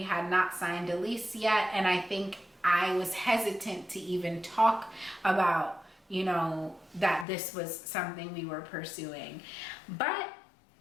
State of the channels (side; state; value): right; drops out; at 7.2 s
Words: had not signed a lease yet, and I think I was hesitant to even talk about, that this was something we were pursuing. But